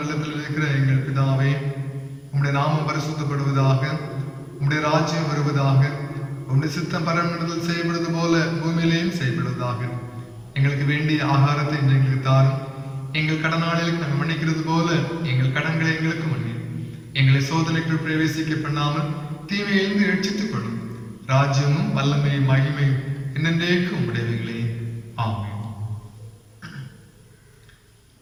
இருக்கிற எங்கள் பிதாவே, உம்முடைய நாமம் பரிசுத்தப்படுவதாக, உம்முடைய ராஜ்யம் வருவதாக, உம்முடைய சித்தம் பரமண்டலத்தில் செய்யப்படுவது போல பூமியிலேயும் செய்யப்படுவதாக. எங்களுக்கு வேண்டிய ஆகாரத்தை எங்களுக்கு தாரும். எங்கள் கடனாளிகளுக்கு நாங்கள் மன்னிக்கிறது போல எங்கள் கடன்களை எங்களுக்கு மன்னி. எங்களை சோதனைக்குள் பிரவேசிக்க பண்ணாமல் தீமையிலிருந்து ரட்சித்துக் கொள்ளும். ராஜ்யமும் வல்லமையும் மகிமையும் என்னென்றேக்கு உம்முடையவைகளே. ஆமென்.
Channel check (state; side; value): identical; both; correlation 1.00